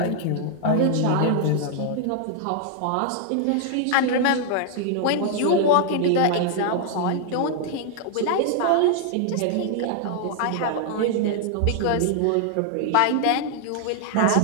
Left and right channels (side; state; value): both; different; correlation 0.00